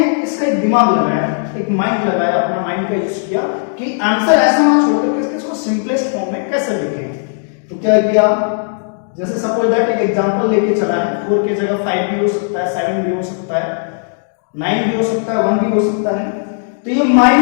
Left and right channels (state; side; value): silent; right; digital silence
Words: इसका एक दिमाग लगाया, एक माइंड लगाया, अपना माइंड का यूज किया कि आंसर ऐसा ना छोड़ करके इसको सिंपलेस्ट फॉर्म में कैसे लिखें। तो क्या किया, जैसे सपोज दैट एक एग्जांपल लेके चला है, 4 की जगह 5 भी हो सकता है, 7 भी हो सकता है, 9 भी हो सकता है, 1 भी हो सकता है। तो ये